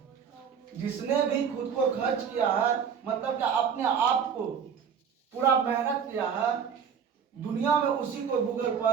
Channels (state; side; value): quieter; left; 7.2 dB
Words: जिसने भी खुद को खर्च किया है मतलब कि अपने आप को पूरा मेहनत किया है, दुनिया में उसी को गूगल